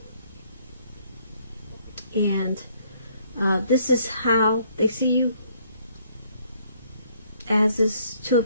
And this is how they see you, as this Two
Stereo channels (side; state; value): both; inverted; correlation -0.65